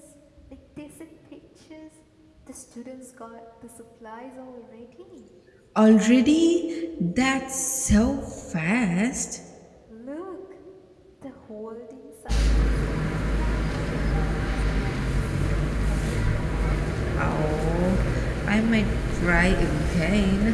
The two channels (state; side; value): identical; both; correlation 1.00